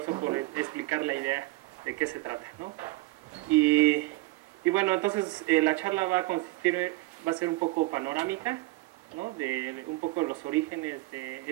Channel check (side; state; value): left; quieter; 20.7 dB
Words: por explicar la idea de qué se trata, ¿no? Y bueno, entonces la charla va a ser un poco panorámica, ¿no?, de un poco los orígenes de